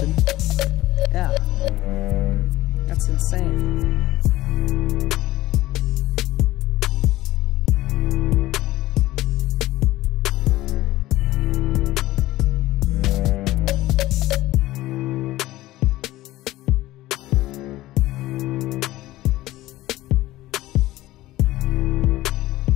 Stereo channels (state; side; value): quieter; right; 16.9 dB